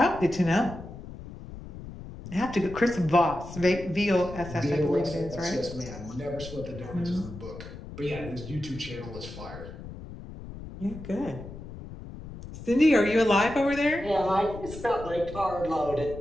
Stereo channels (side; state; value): left; noise; rumble, 13 dB below the sound